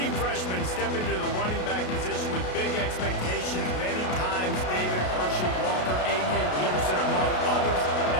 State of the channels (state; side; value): late; right; 33 ms